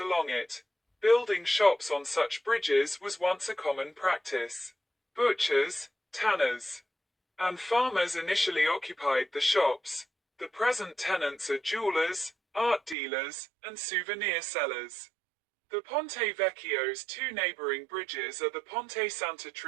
it. Building shops on such bridges was once a common practice. Butchers, tanners, and farmers initially occupied the shops. The present tenants are jewelers, art dealers, and souvenir sellers. The Ponte Vecchio's two neighboring bridges are the Ponte Santa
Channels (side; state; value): left; drops out; at 13.0 s